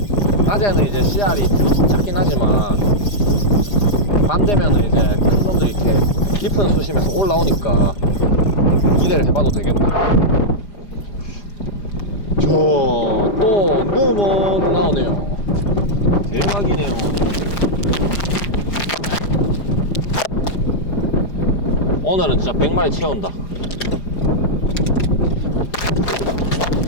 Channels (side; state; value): right; late; 4.9 ms